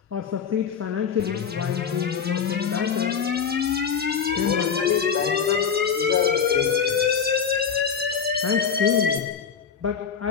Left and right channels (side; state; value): right; quieter; 6.9 dB